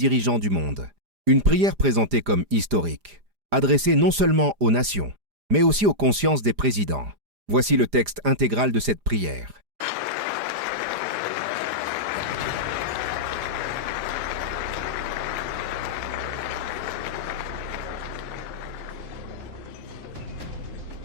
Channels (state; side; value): late; left; 4.9 ms